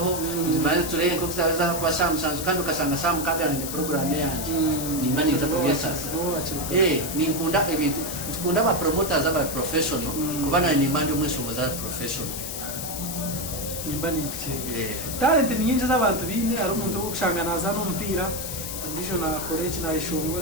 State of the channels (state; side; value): noise; left; hiss, 6 dB below the sound